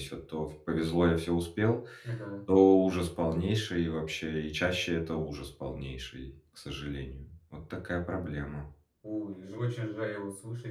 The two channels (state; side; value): identical; both; correlation 1.00